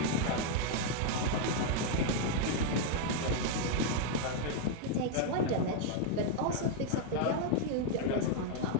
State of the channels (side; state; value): both; different; correlation 0.00